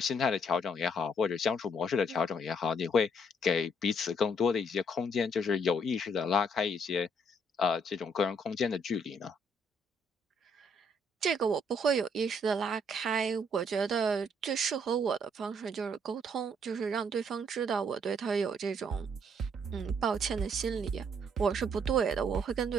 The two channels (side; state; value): both; normal; correlation 0.68